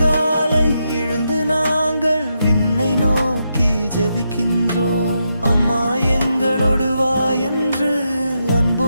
எழுந்து நாங்கள் விண்ணை நோக்கி ஜெபிக்கின்றோம். அம்மா எங்களோடு வா என்று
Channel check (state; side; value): inverted; both; correlation -0.83